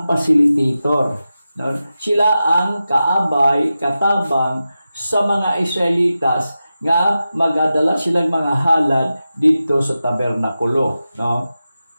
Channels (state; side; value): inverted; both; correlation -0.92